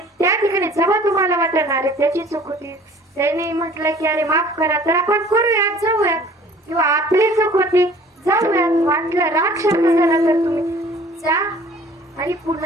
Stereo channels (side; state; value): both; normal; correlation 0.51